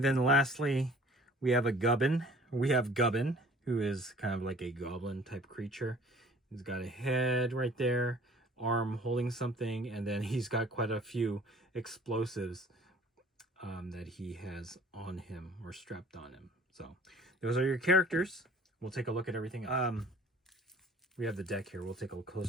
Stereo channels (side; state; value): both; normal; correlation 0.51